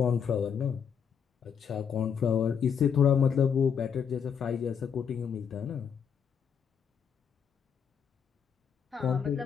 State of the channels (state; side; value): quieter; right; 7.3 dB